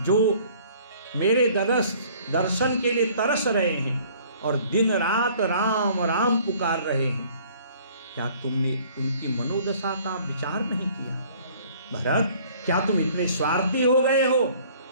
जो मेरे दर्शन के लिए तरस रहे हैं और दिन रात राम राम पुकार रहे हैं, क्या तुमने उनकी मनोदशा का विचार नहीं किया? भरत, क्या तुम इतने स्वार्थी हो गए हो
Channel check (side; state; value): both; inverted; correlation -0.54